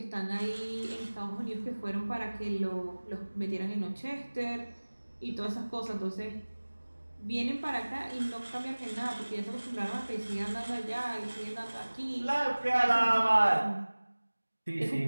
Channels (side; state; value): both; inverted; correlation -1.00